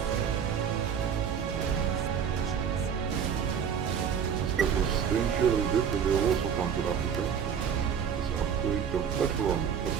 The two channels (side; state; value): left; quieter; 7.6 dB